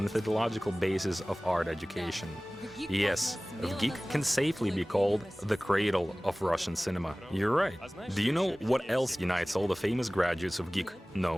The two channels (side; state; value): both; normal; correlation 0.98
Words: basis of art education. Yes, VGIK can safely be called the cradle of Russian cinema. You're right. Do you know what else unites all the famous graduates of VGIK?